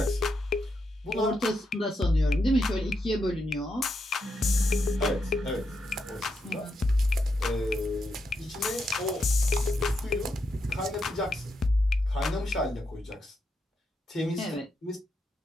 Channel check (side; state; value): both; normal; correlation 0.83